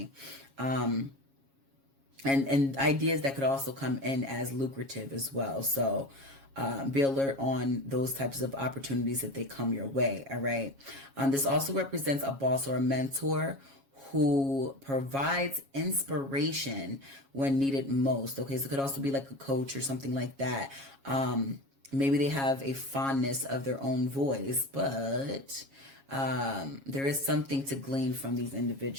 And ideas that could also come in as lucrative as well. So be alert on those types of opportunities if they come your way, all right? This also represents a boss or a mentor who provides inspiration when needed most, okay? So it could also be like a coach or something like that. Maybe they have a fondness of their own voice, but there is something to glean from these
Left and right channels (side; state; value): left; late; 7.3 ms